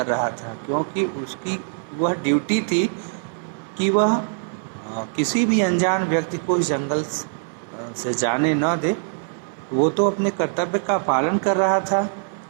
रहा था। क्योंकि उसकी वह ड्यूटी थी कि वह किसी भी अनजान व्यक्ति को इस जंगल से जाने न दे। वो तो अपने कर्तव्य का पालन कर रहा था,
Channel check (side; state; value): left; silent; 57 dB below the other